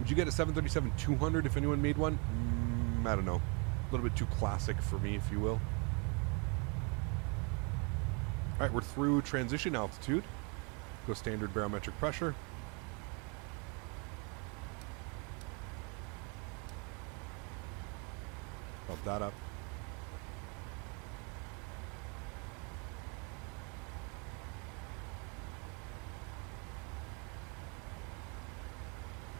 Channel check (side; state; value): left; quieter; 33.6 dB